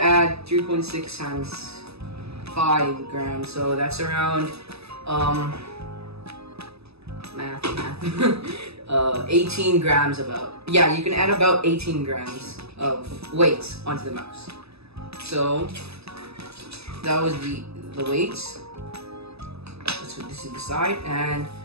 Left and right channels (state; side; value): late; left; 0.79 ms